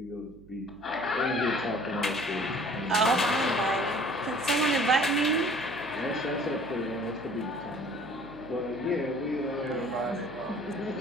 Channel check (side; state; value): right; noise; hum, 22 dB below the sound